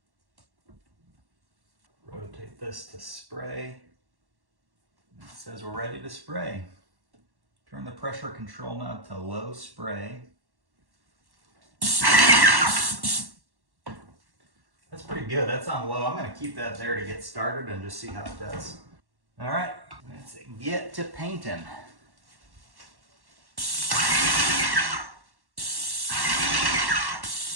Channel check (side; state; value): left; late; 1.1 ms